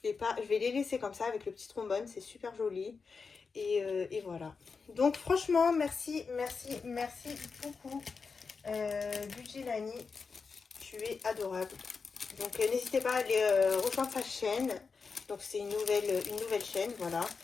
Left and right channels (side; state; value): right; quieter; 5.0 dB